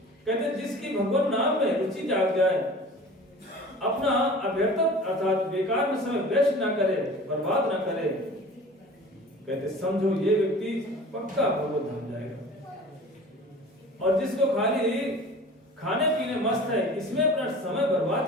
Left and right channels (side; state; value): both; normal; correlation 0.41